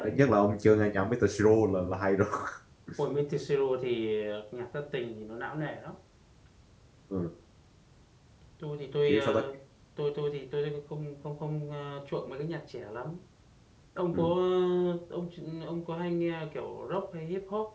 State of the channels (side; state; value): both; identical; correlation 1.00